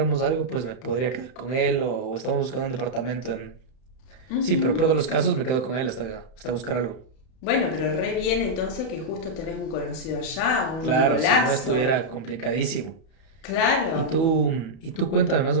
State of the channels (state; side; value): late; right; 31 ms